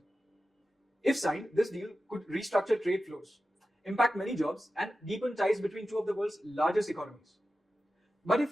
If signed, this deal could restructure trade flows, impact many jobs, and deepen ties between two of the world's largest economies. But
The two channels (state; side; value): normal; both; correlation 0.93